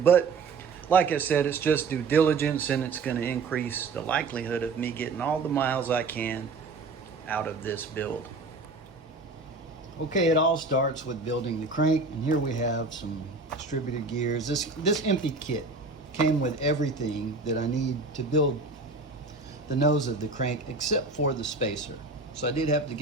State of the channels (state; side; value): quieter; left; 3.9 dB